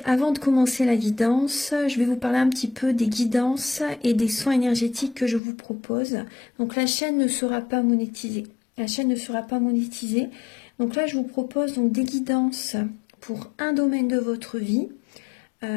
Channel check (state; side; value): drops out; right; at 5.4 s